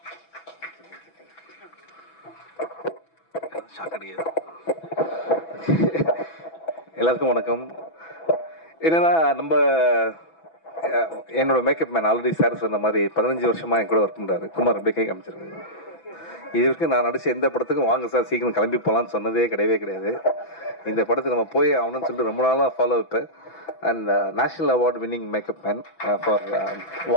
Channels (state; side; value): late; right; 6.1 ms